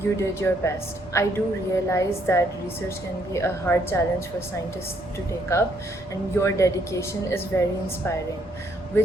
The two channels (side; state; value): both; normal; correlation 0.70